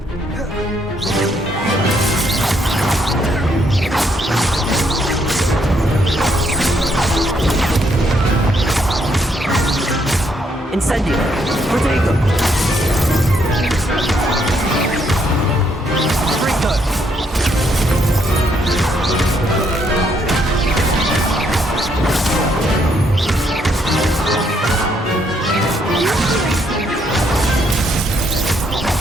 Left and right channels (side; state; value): both; normal; correlation 0.72